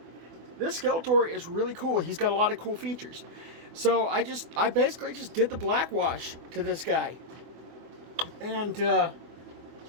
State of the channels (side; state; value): left; late; 24 ms